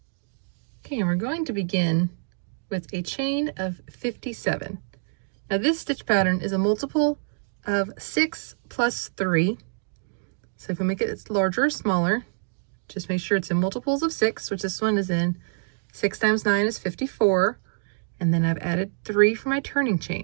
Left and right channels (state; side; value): silent; left; digital silence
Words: Okay, and we're going to begin with a chain of 57. Now this stitch pattern is a multiple of 6 plus 3. So if we make it larger or smaller, just make sure it's in multiples of 6, which this one is in. 6 times 9 is 54. And then I've added 3 for my turning